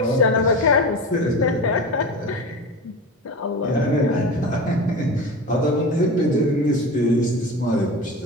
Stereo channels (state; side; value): normal; both; correlation 0.29